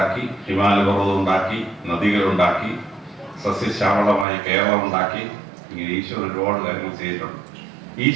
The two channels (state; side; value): drops out; left; at 4.2 s